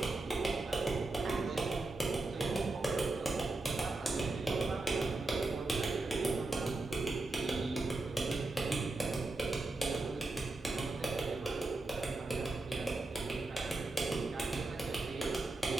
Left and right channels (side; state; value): left; quieter; 3.0 dB